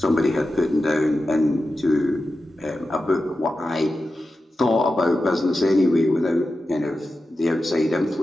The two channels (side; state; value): both; normal; correlation 0.92